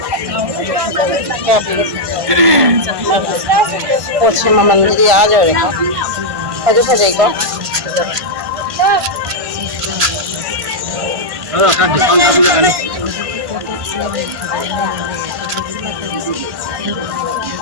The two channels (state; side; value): late; left; 1.5 ms